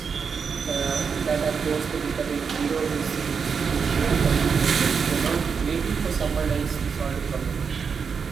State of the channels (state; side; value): quieter; left; 6.0 dB